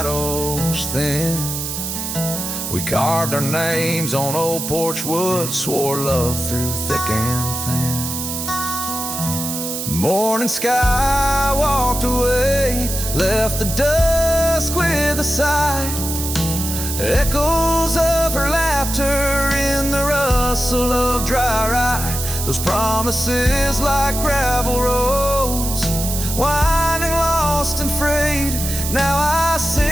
thin. We carved our names on old porch wood, swore love through thick and thin. Morning sky walked away, left the dusk with a sigh. Echoes of her laughter in the rustle of dry rye. Those promises like gravel roads, winding lost and frayed. Now I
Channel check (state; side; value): noise; right; hiss, 5 dB below the sound